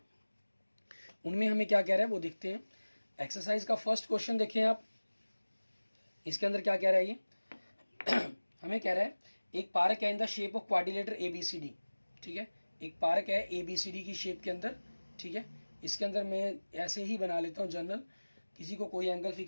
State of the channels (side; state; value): both; inverted; correlation -1.00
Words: उनमें हमें क्या कह रहा है वो देखते हैं। एक्सरसाइज का फर्स्ट क्वेश्चन देखें आप, इसके अंदर क्या कह रहा है ये हमें कह रहा है एक पार्क है इन the shape of quadrilateral ABCD, ठीक है। एक पार्क है ABCD की शेप के अंदर, ठीक है। इसके अंदर मैं ऐसे ही बना लेता हूँ जनरल, किसी को कोई एंगल